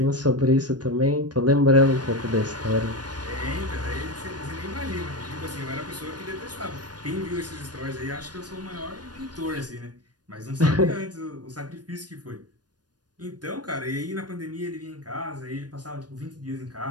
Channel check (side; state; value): left; late; 0.69 ms